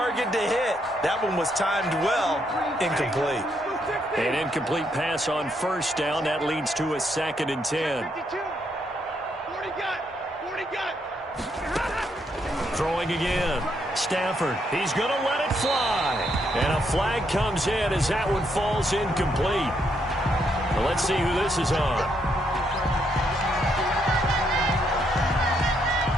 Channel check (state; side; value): normal; both; correlation 0.75